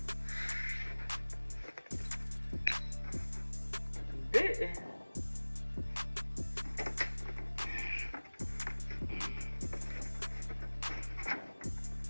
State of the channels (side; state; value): both; inverted; correlation -1.00